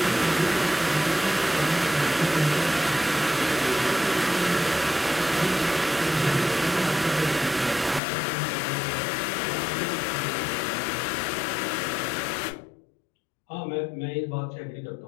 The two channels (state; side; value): drops out; right; at 8.0 s